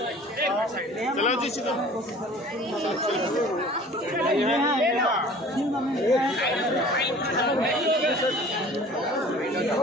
चलो जी चलो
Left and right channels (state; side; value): normal; both; correlation 0.46